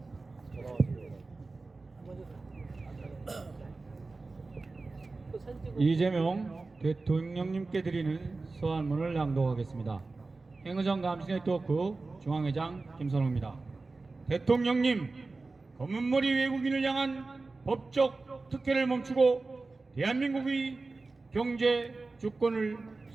이재명 대통령님께 드리는 서한문을 낭독하겠습니다. 행의정 감시네 토크 중앙회장 김선호입니다. 대통령님, 검은머리 외국인을 향한 법적 특혜를 멈추고 대한민국의 경제 주권을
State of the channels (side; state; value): left; quieter; 3.6 dB